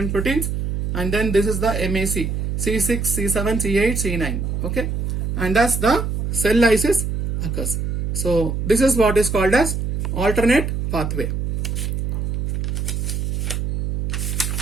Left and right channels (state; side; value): noise; right; hum, 1 dB below the sound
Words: proteins. And then this is the MAC. C6, C7, C8, C9. Okay, and thus the cell lysis occurs. So this is what is called as alternate pathway.